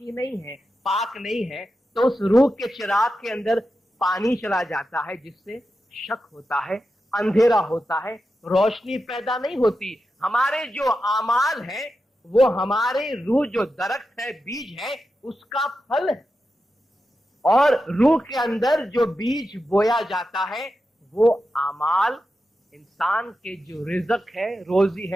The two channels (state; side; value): normal; both; correlation 0.90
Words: नहीं है, पाक नहीं है, तो उस रूह के चिराग के अंदर पानी चला जाता है, जिससे शक होता है, अंधेरा होता है, रोशनी पैदा नहीं होती। हमारे जो आमाल है वो हमारे रूह जो दरख्त है, बीज है, उसका फल है। और रूह के अंदर जो बीज बोया जाता है वो आमाल, इंसान के जो रिज़्क़ है, रोजी